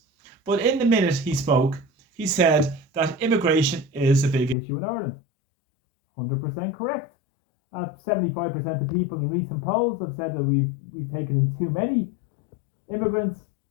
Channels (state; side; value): drops out; right; at 4.5 s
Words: But in the minute he spoke, he said that immigration is a big issue in Ireland. 100% correct. 75% of people in recent polls have said that we've taken in too many immigrants,